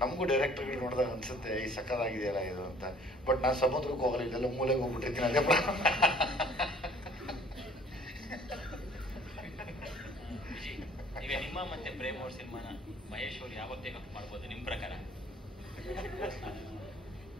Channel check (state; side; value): normal; both; correlation 0.54